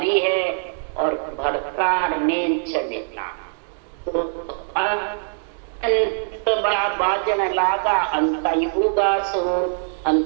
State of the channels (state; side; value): silent; left; digital silence